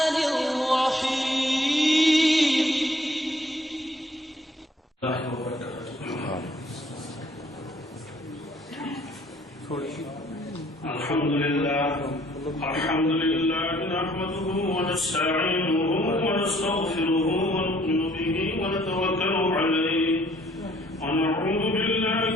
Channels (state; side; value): normal; both; correlation 0.61